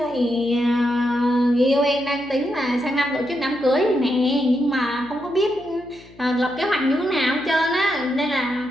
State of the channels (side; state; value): left; noise; hum, 24 dB below the sound